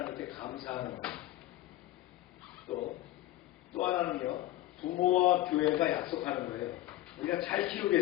감사하는 것. 또 하나는요, 부모와 교회가 약속하는 거예요. 우리가 잘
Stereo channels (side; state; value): right; quieter; 15.2 dB